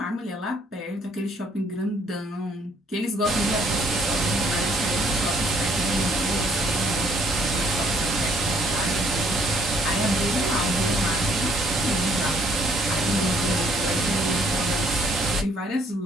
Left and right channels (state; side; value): normal; both; correlation 0.65